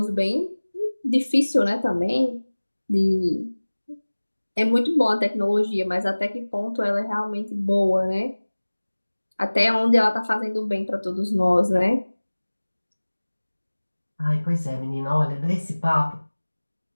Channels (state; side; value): inverted; both; correlation -1.00